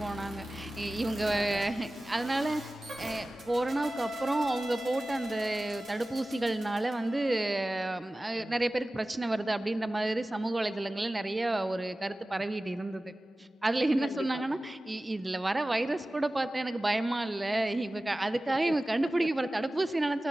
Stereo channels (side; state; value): both; normal; correlation 0.96